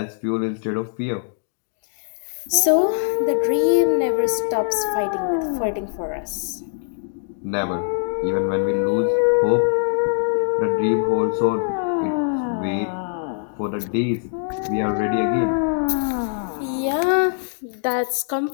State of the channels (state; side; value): silent; right; 64 dB below the other